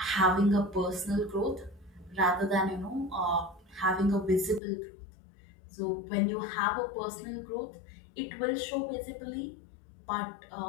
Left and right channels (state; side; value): drops out; right; at 4.6 s